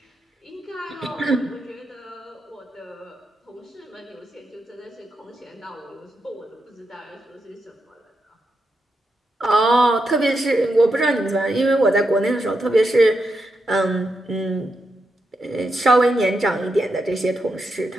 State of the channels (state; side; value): normal; both; correlation 0.84